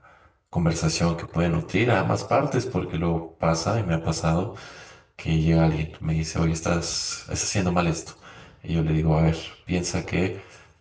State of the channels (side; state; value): both; identical; correlation 1.00